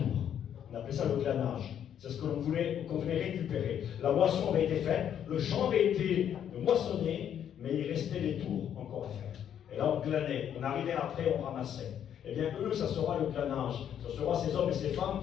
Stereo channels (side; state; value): right; quieter; 9.4 dB